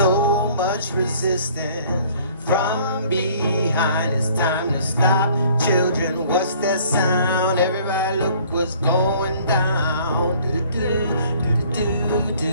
much resistance from behind. It's time to stop, children. What's that sound? Everybody look what's going down. Do do do do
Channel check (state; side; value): inverted; both; correlation -0.56